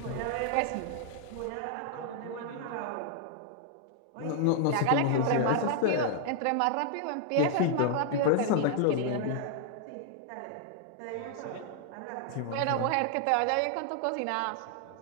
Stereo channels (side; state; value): both; different; correlation 0.00